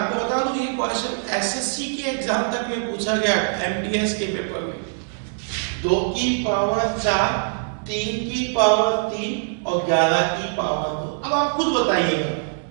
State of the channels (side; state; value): left; silent; digital silence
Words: बता दूं ये क्वेश्चन एसएससी के एग्जाम तक में पूछा गया, एमटीएस के पेपर में। 2 की पावर 4, 3 की पावर 3 और 11 की पावर 2। अब आप खुद बताइएगा